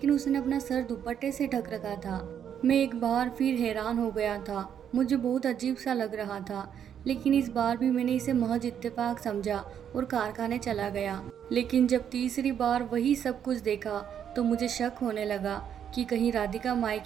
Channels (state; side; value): quieter; left; 8.8 dB